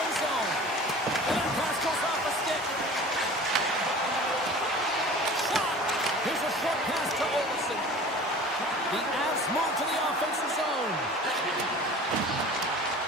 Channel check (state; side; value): normal; both; correlation 0.41